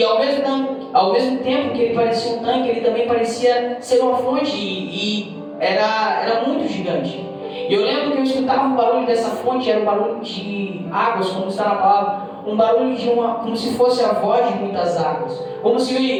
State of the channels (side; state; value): both; identical; correlation 1.00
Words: ao mesmo tempo que ele parecia um tanque, ele também parecia ser uma fonte e era muito gigante. E eu lembro que eu escutava o barulho dessa fonte, era um barulho de águas, como está na palavra, um barulho como se fosse a voz de muitas águas, como